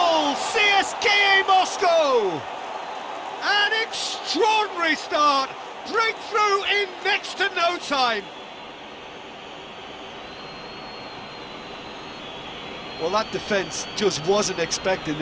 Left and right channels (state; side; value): identical; both; correlation 1.00